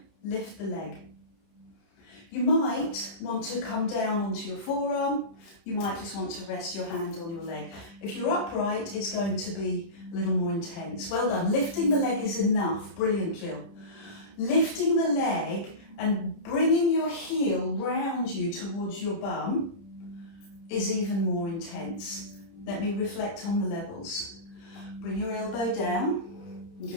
lift the leg. You might want to come down onto your forearm, you might just want to rest your hand on your leg. If you're upright, it's going to be a little more intense. Well done. Lifting the leg is enough. Brilliant, Jill. Lifting the leg and bringing your heel round you towards your bum is even more intense. Let me reflect on the levels. Bring your elbow down and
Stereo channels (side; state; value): right; late; 30 ms